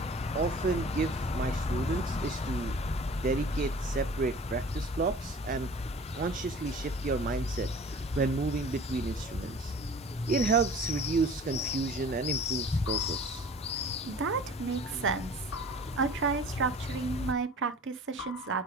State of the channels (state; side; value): normal; both; correlation 0.45